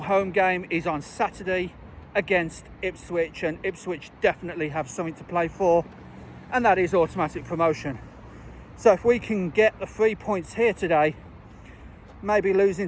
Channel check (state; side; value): identical; both; correlation 1.00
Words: game is on Saturday against Ipswich, and Ipswich definitely have something to play for, and that is automatic promotion. So if we can get the 3 points here today, maybe losing